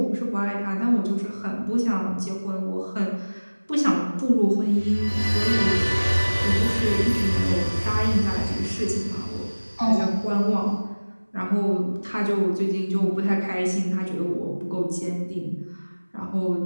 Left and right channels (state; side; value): inverted; both; correlation -1.00